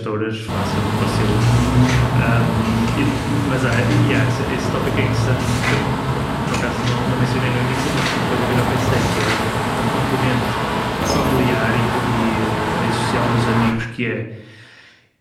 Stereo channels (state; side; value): identical; both; correlation 1.00